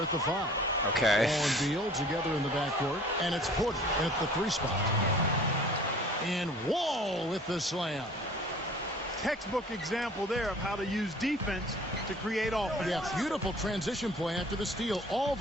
at the 5. Okay. Wall and Beal together in the backcourt. And it's Porter at the 3 spot. And Wall with the slam. Textbook example there of how to use defense to create offense. Yeah, beautiful transition play after the steal all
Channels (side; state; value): both; normal; correlation 0.49